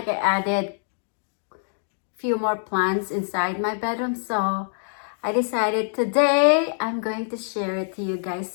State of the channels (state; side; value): silent; right; digital silence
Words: I added few more plants inside my bedroom. So I decided today I'm going to share it to you guys.